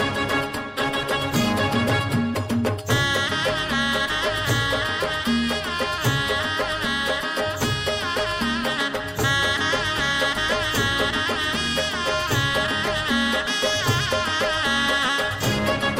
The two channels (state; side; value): identical; both; correlation 1.00